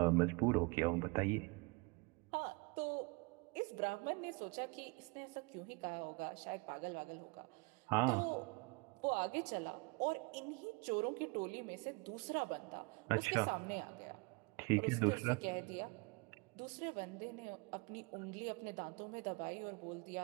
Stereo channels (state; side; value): quieter; left; 28.4 dB